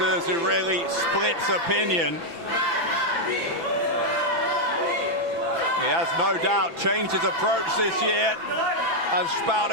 who really splits opinion. He has no doubt changed his approach this year as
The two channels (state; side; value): late; left; 5.9 ms